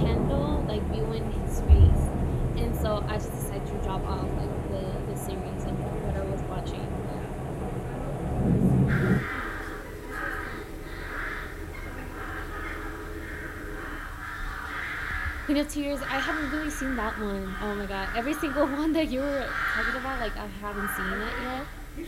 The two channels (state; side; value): identical; both; correlation 1.00